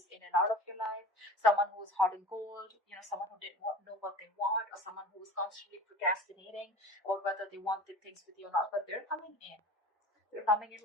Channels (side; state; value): both; normal; correlation 0.38